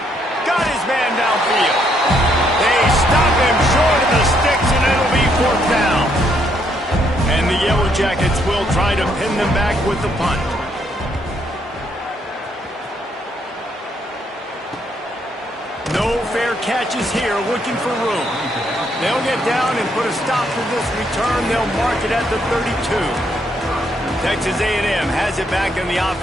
Got his man downfield. They stop him short of the sticks, and it'll be 4th down. And the Yellow Jackets will try to pin them back with the punt. No fair catches here, looking for room. They'll get down and put a stop to this return. They'll mark it at the 32. Texas A&M has it back in the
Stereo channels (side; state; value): both; normal; correlation 0.73